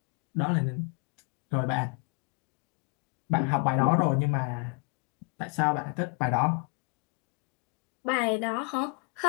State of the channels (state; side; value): quieter; right; 32.8 dB